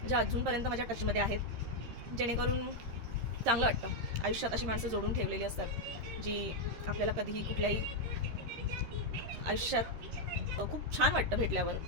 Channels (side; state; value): left; late; 13 ms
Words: ज्या अजूनपर्यंत माझ्या टचमध्ये आहेत, जेणेकरून चांगलं वाटतं. आयुष्यात अशी माणसं जोडून ठेवलेली असतात, जी आपल्याला कधीही कुठल्याही आयुष्यात खूप छान वाटतं भेटल्यावर.